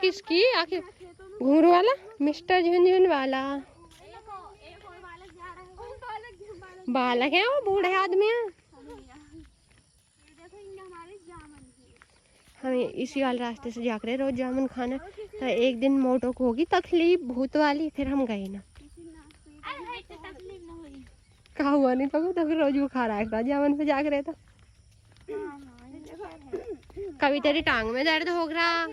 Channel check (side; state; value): both; identical; correlation 1.00